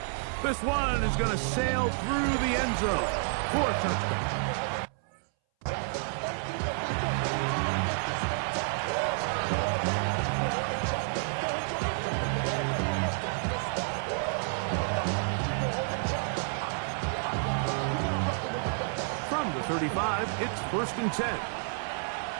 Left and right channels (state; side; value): silent; left; 58 dB below the other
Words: This one is going to sail through the end zone for a touchdown. From the 35, it's 1st and 10.